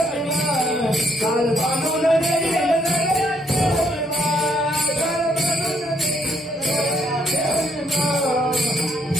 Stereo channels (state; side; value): normal; both; correlation 0.72